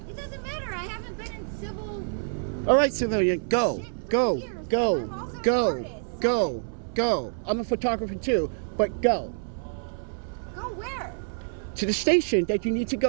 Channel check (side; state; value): left; silent; 60 dB below the other